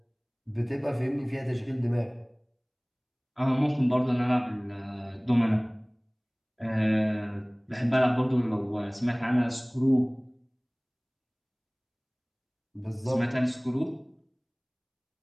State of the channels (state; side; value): identical; both; correlation 1.00